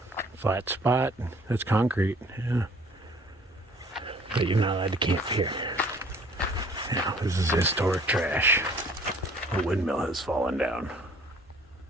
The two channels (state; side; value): normal; both; correlation 0.55